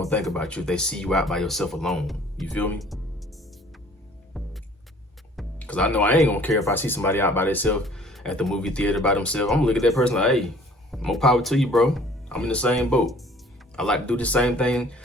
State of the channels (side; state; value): both; normal; correlation 0.53